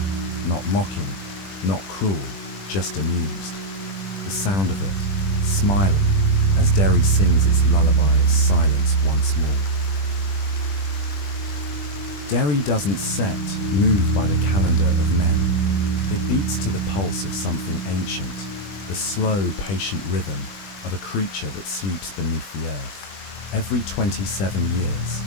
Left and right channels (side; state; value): right; late; 20 ms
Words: not mocking, not cruel, just amused. The sound of it, smiling, as Derry sings its lullaby of silence once more. Derry doesn't set, moved by the calendar of men. It beats to the pulse of something ancient, the slow, patient rhythm of a creature that sleeps beneath the earth. Every 27 years,